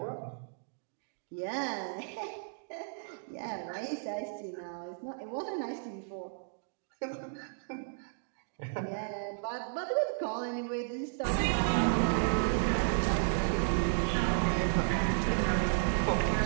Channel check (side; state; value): left; silent; digital silence